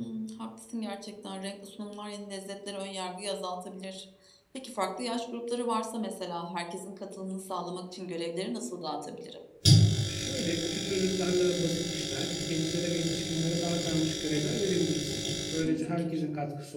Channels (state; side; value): identical; both; correlation 1.00